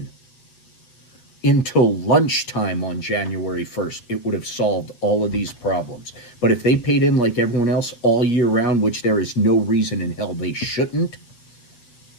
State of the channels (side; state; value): right; late; 8.3 ms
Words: until lunchtime on January 1st, it would have solved all of these problems. But if they paid in like everyone else all year round, which there is no reason in hell they shouldn't,